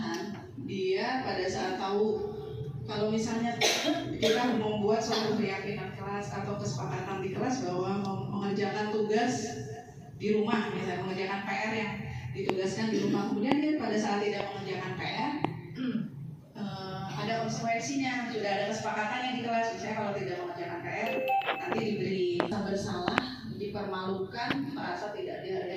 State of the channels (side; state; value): both; identical; correlation 1.00